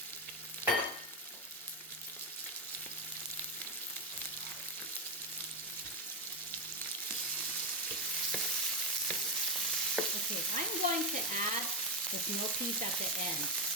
Okay, I'm going to add the snow peas at the end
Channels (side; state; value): both; normal; correlation 0.09